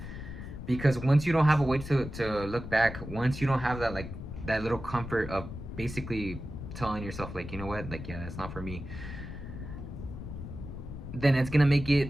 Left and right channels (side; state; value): left; noise; rumble, 9 dB below the sound